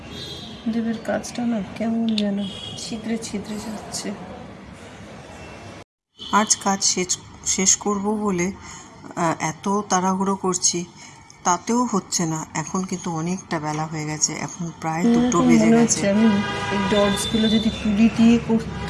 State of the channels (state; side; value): identical; both; correlation 1.00